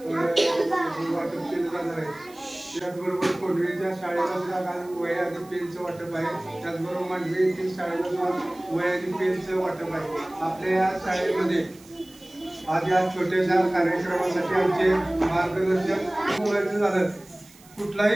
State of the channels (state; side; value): noise; right; hiss, 25 dB below the sound